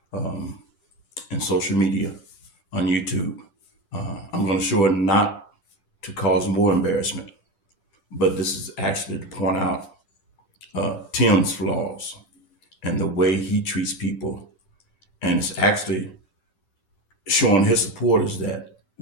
in social media, on YouTube, I'm going to show it not to cause more embarrassment, but this is actually to point out Tim's flaws and the way he treats people. And it's actually showing his supporters that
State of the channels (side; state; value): right; late; 10 ms